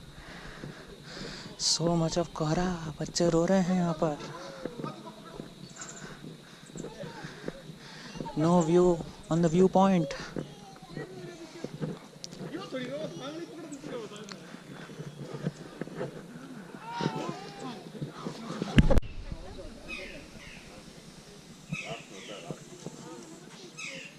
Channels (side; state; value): both; identical; correlation 1.00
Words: सो मच ऑफ कोहरा, बच्चे रो रहे हैं यहाँ पर। No view on the view point.